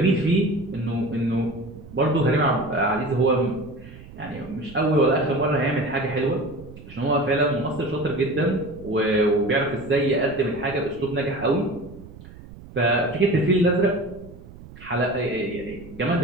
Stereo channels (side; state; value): right; noise; rumble, 18 dB below the sound